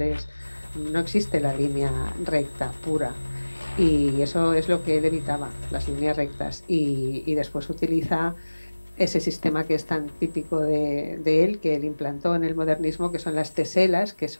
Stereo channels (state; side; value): inverted; both; correlation -1.00